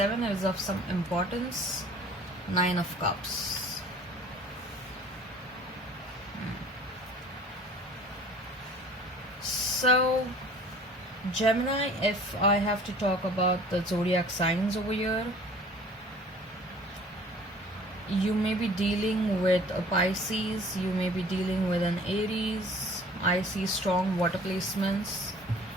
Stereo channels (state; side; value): normal; both; correlation 0.49